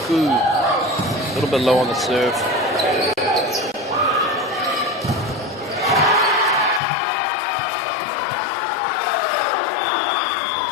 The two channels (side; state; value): right; drops out; at 6.8 s